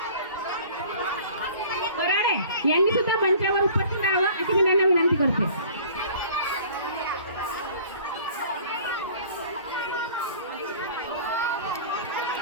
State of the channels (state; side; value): inverted; both; correlation -0.47